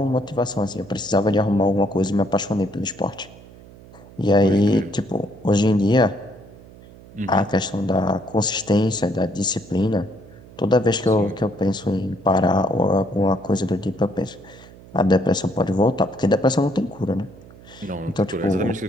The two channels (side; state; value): right; noise; hum, 21 dB below the sound